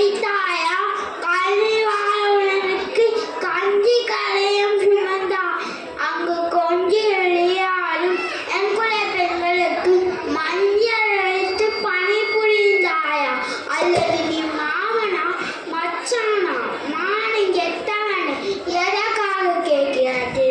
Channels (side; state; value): both; identical; correlation 1.00